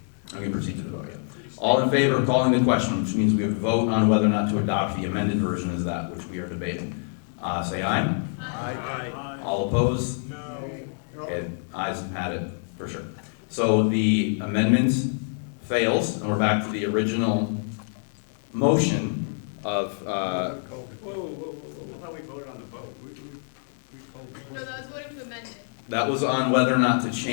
gonna proceed to the vote, yeah. All in favor of calling the question, which means we have to vote on whether or not to adopt the amended version is that which we are debating. Say aye. Aye. All opposed? No. Okay, ayes had it, for sure. So the amendment fails, and we're back to the original motion of, Whoa, I thought we voted on the vote. No, that was voting to amend it. that was on whether or not to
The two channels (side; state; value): right; silent; 61 dB below the other